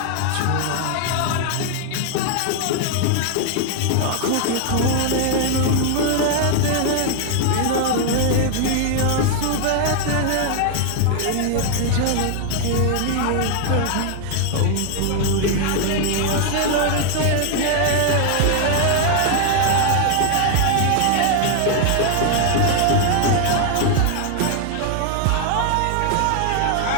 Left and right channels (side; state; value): both; different; correlation 0.00